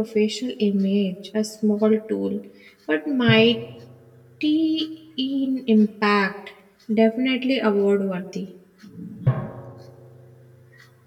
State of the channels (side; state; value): both; identical; correlation 1.00